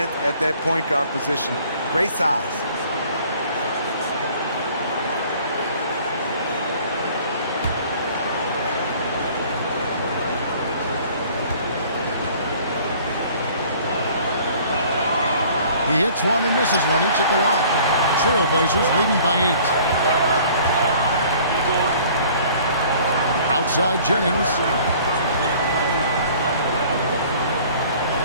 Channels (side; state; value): both; inverted; correlation -0.52